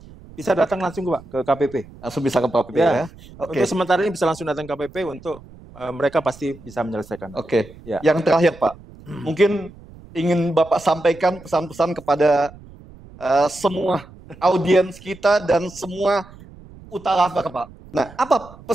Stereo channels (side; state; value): right; noise; rumble, 20 dB below the sound